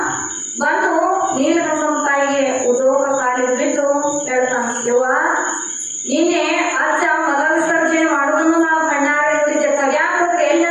ಬಂದು ನೀಲಗಂಗಮ್ಮ ತಾಯಿಗೆ ಉದೋಗ ಕಾಲಿಗೆ ಬಿದ್ದು ಹೇಳ್ತಾನ, ಯವ್ವ ನಿನ್ನೆ ಅಜ್ಜ ಮಲ ವಿಸರ್ಜನೆ ಮಾಡೋದನ್ನು ನಾವು ಕಣ್ಣಾರೆ ನೋಡಿದ್ದೆ, ತಗ್ಯಾಕ ಹೋದ್ರೆ ಎಲ್ಲಿ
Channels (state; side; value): identical; both; correlation 1.00